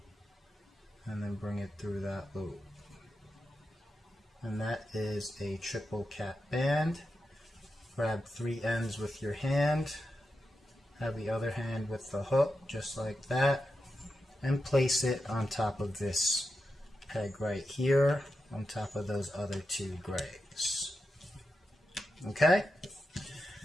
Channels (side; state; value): both; normal; correlation 0.89